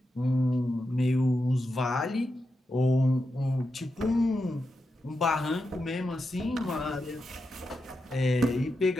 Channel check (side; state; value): both; normal; correlation 0.88